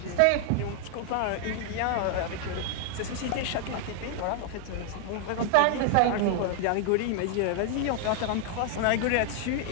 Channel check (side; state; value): both; different; correlation 0.00